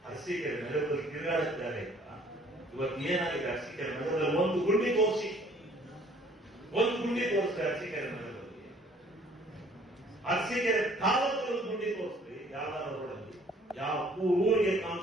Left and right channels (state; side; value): normal; both; correlation 0.57